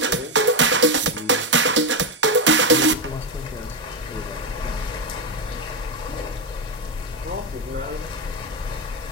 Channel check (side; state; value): both; normal; correlation 0.07